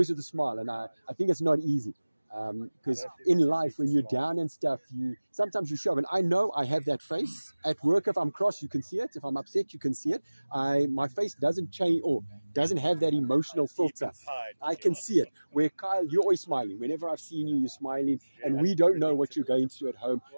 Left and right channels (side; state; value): both; inverted; correlation -1.00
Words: with a smile, and I think it's not easy. Because in life, when you're down and stuff, sometimes you show. And I know I have that face at work. If I'm cross, you can see it. If I'm upset, you can see it. My face doesn't change or doesn't have that emotional filter. I can see it. Where Kyle, you're always smiling. Whenever I've seen you, you're smiling. And we don't know what you're going through at home.